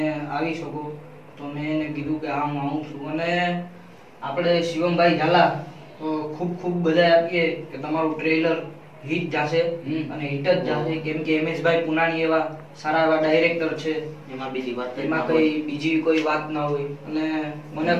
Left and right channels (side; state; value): both; identical; correlation 1.00